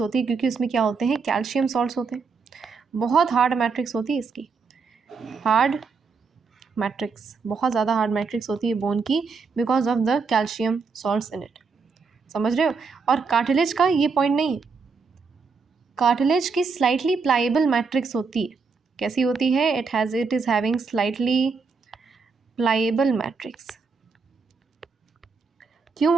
है, क्योंकि उसमें क्या होते हैं, कैल्शियम सॉल्ट्स होते हैं, बहुत हार्ड मैट्रिक्स होती है इसकी, हार्ड मैट्रिक्स, बहुत ज़्यादा हार्ड मैट्रिक्स होती है बोन की, because of the calcium salts in it. समझ रहे हो। और कार्टिलेज का ये पॉइंट नहीं, कार्टिलेज की स्लाइटली प्लाइबल मैट्रिक्स होती है। कैसी होती है, it is having slightly pliable matrix. क्यों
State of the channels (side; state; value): left; quieter; 4.9 dB